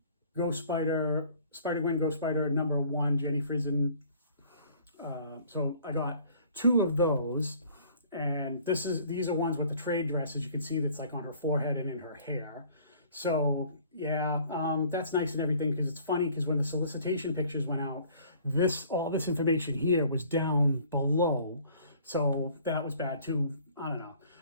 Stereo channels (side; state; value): both; inverted; correlation -0.54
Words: Ghost Spider, Spider-Gwen Ghost Spider #1, Jenny Frison. So I got 2 of those, and these are ones with the trade dress, as you can see, that's like on her forehead and in her hair. So yeah, that's nice and everything, because it's funny, because when the solicitation pictures went out, all this information here was down below, so that was bad too. I don't know,